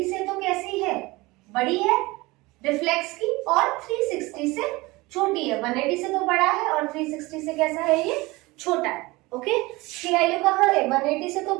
से तो कैसी है, बड़ी है रिफ्लेक्स की, और 360 से छोटी है। 180 से तो बड़ा है और 360 से कैसा है, ये छोटा है। ओके, इसकी वैल्यू कहाँ है, 180 से तो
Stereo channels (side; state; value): left; quieter; 22.2 dB